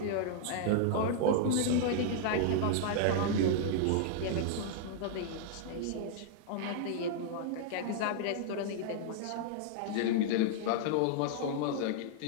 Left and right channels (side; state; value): both; different; correlation -0.01